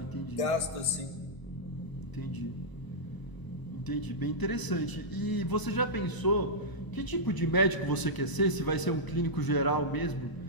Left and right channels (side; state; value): right; late; 1.0 ms